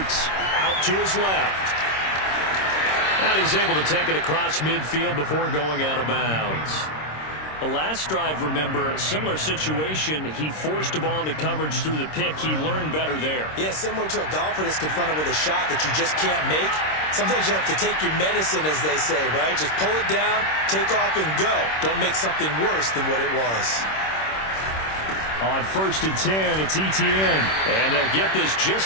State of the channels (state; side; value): late; right; 26 ms